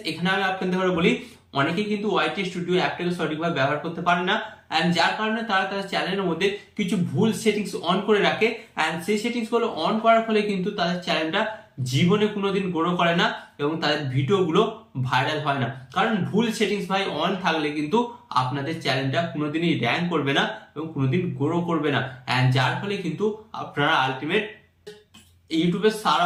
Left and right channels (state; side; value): identical; both; correlation 1.00